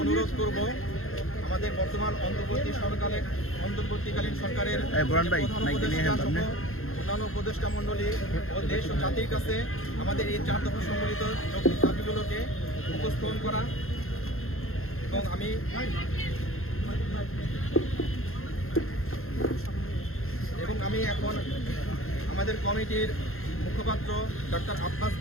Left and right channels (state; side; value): late; right; 0.61 ms